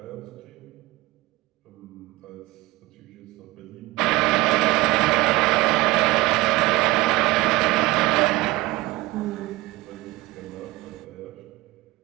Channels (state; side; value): quieter; left; 19.3 dB